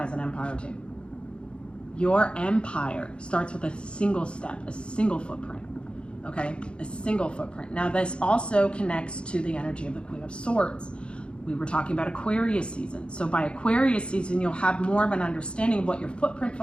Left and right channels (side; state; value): right; late; 0.056 ms